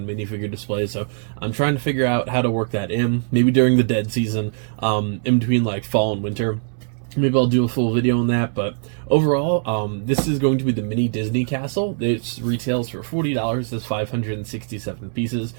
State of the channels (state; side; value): silent; left; digital silence